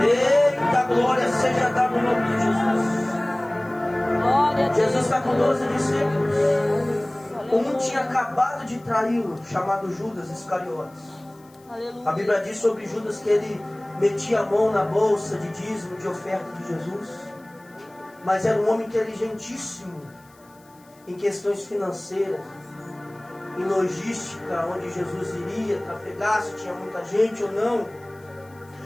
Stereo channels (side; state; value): left; noise; hiss, 30 dB below the sound